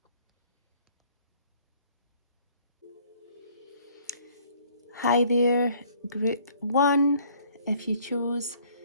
Hi there, group 1. If you chose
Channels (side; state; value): both; inverted; correlation -0.59